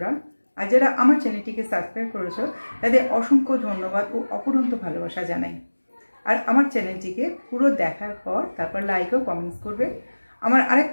আর যারা আমার চ্যানেলটিকে সাবস্ক্রাইব করেছো তাদের অসংখ্য ধন্যবাদ ও অপরন্ত ভালোবাসা জানাই। আর আমার চ্যানেলটিকে পুরো দেখার পর তারপর লাইক ও কমেন্টস করবে। আমার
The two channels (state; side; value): inverted; both; correlation -1.00